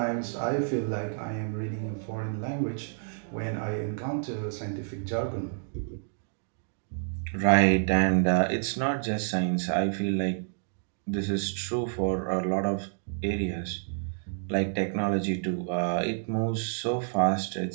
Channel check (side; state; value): left; silent; digital silence